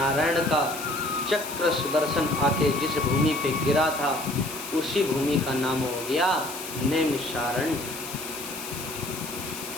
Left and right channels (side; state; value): left; noise; hiss, 10 dB below the sound